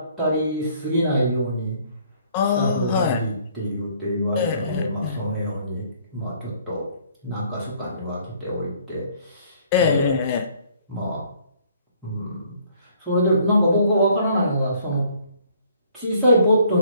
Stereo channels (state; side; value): inverted; both; correlation -0.61